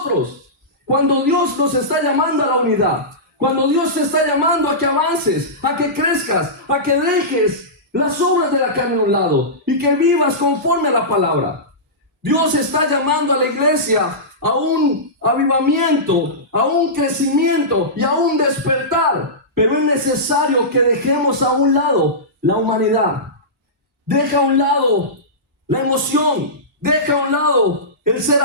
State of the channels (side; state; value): both; normal; correlation -0.17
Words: cuando Dios nos está llamando a la unidad, cuando Dios te está llamando a que avances, a que crezcas, a que dejes las obras de la carne a un lado y que vivas conforme a la palabra. Dios está llamando a la iglesia a un avivamiento, a un crecimiento y a un despertar. Pero es necesario que dejemos a un lado la humanidad. Deja a un lado la emoción. Deja a un lado el ser